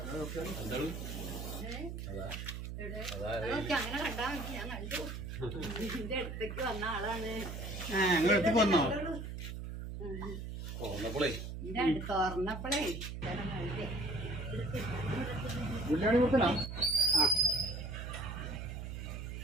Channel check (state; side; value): noise; right; hum, 7 dB below the sound